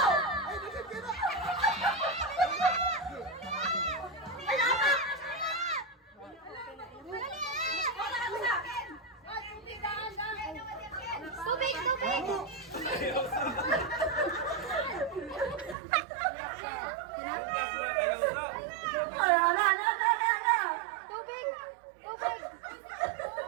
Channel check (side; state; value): left; drops out; at 15.8 s